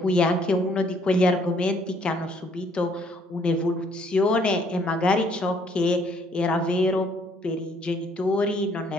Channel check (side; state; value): both; normal; correlation 0.64